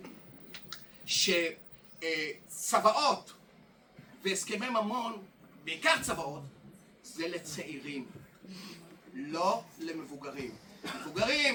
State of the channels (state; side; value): identical; both; correlation 1.00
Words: שצוואות והסכמי ממון, בעיקר צוואות, זה לצעירים, לא למבוגרים.